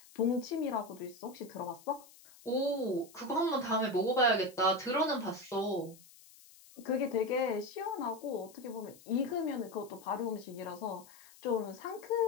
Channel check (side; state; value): left; noise; hiss, 23 dB below the sound